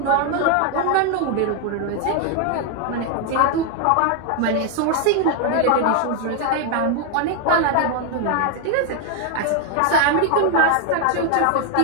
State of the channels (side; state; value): both; different; correlation 0.00